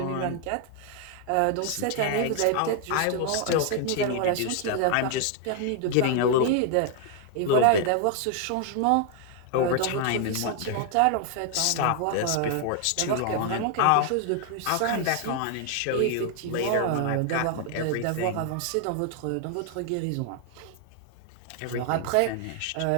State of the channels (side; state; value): both; different; correlation 0.00